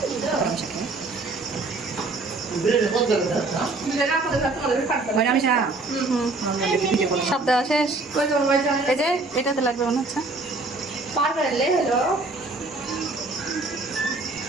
সব দেওয়া শেষ। এই যে এটাতে লাগবে মনে হচ্ছে।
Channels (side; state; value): left; quieter; 3.4 dB